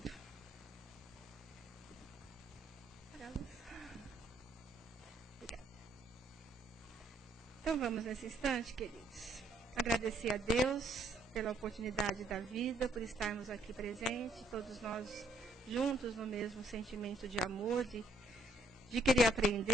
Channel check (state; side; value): normal; both; correlation 0.67